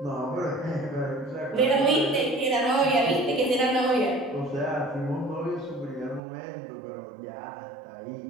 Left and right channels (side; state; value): left; drops out; at 6.2 s